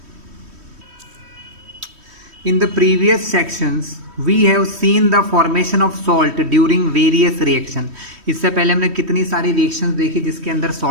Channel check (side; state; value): left; late; 3.1 ms